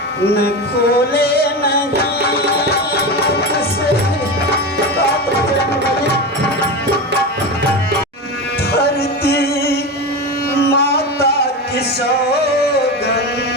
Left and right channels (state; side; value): normal; both; correlation 0.22